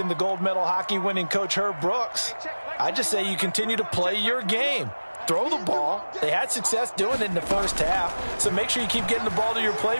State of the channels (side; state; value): both; inverted; correlation -1.00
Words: the gold medal hockey winning coach Herb Brooks, I just say you continue to play your game. Throw the ball. They had success doing it in the first half, so make sure you keep getting the ball to your